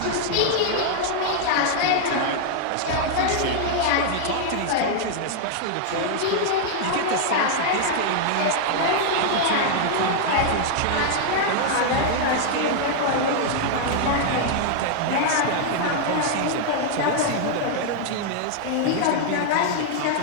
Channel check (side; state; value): both; different; correlation 0.00